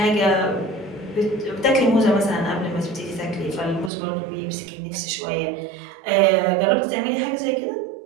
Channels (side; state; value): left; drops out; at 3.9 s